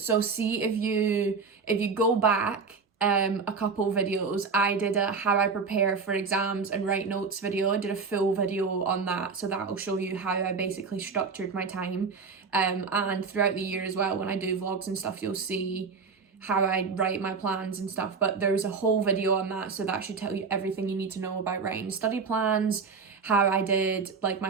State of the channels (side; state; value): left; quieter; 5.0 dB